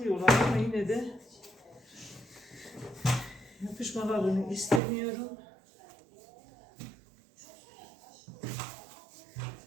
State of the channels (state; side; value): drops out; left; at 4.8 s